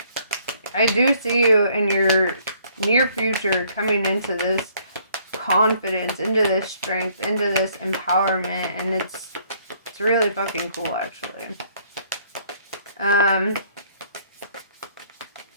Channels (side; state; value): both; inverted; correlation -0.63